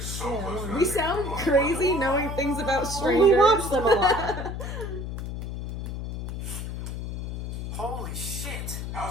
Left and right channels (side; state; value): left; noise; hum, 6 dB below the sound